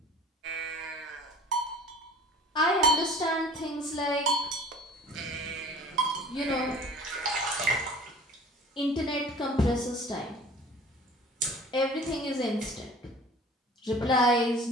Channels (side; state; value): both; normal; correlation 0.46